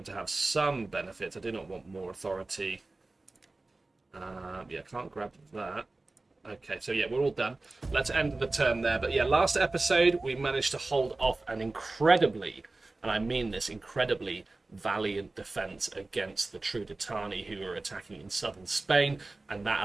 to have some benefits. I do not want more authority. Yeah, can't grab that. Okay, so yeah, we're all done. Let's end the turn there. But yeah, last episode we managed to hold off an incredibly, and I mean this, incredibly valiant defense against the Trudetani who were attacking in southern Spain, and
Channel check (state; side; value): quieter; left; 3.2 dB